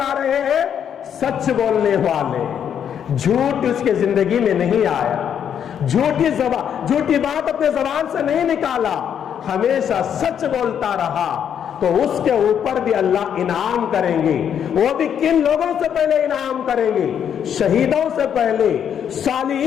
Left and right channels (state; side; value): quieter; right; 8.6 dB